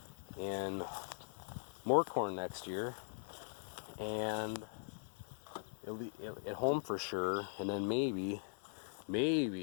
and more corn next year, and it'll be at home for sure, and then maybe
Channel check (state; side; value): silent; right; digital silence